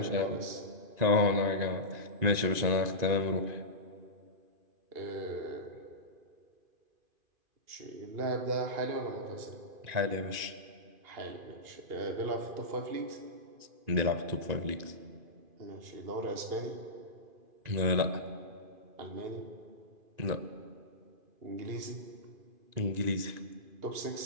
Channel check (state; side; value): late; left; 2.5 ms